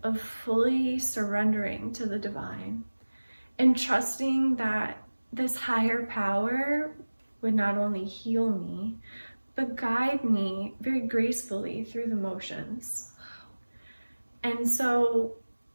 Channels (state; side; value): inverted; both; correlation -1.00